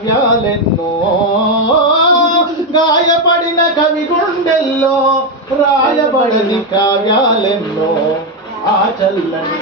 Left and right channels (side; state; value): both; normal; correlation 0.06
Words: గాయపడిన కవి గుండెల్లో రాయబడని కావ్యాలెన్నో. ఆ చల్లని